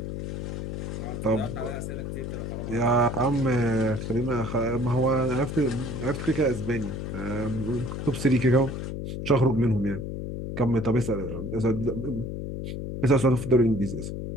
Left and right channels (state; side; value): noise; left; hum, 5 dB below the sound